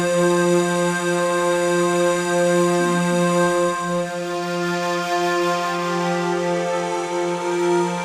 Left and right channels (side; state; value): both; identical; correlation 1.00